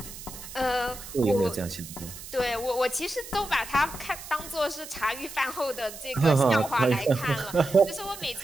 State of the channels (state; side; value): noise; right; hiss, 13 dB below the sound